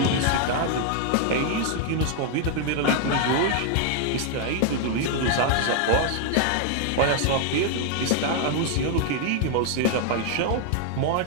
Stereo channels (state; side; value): different; both; correlation 0.00